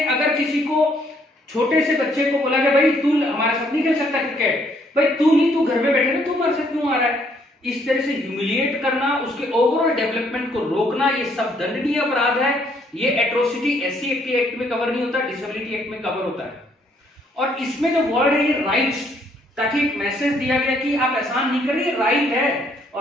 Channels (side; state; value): both; normal; correlation 0.68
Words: अगर किसी को, छोटे से बच्चे को बोला गया भाई तू हमारे साथ नहीं खेल सकता क्रिकेट, भाई तू नहीं, तू घर में बैठे ना, तू हमारे साथ क्यों आ रहा है, इस तरह से ह्यूमिलिएट करना, उसके ओवरऑल डेवलपमेंट को रोकना, ये सब दंडनीय अपराध है। ये एट्रोसिटी SC एक्ट में कवर नहीं होता, डिसेबिलिटी एक्ट में कवर होता है। और इसमें जो वर्ड है ये राइट्स, ताकि एक मैसेज दिया गया कि आप एहसान नहीं कर रहे, राइट है।